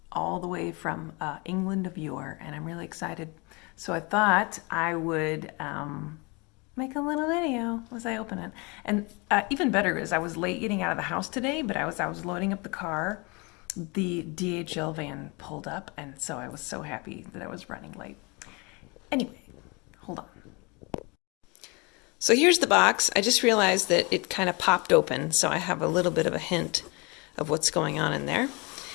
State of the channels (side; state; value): right; quieter; 28.5 dB